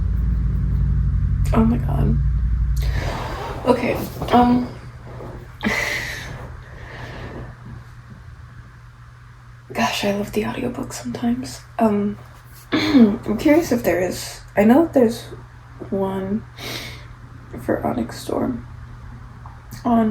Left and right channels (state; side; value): identical; both; correlation 1.00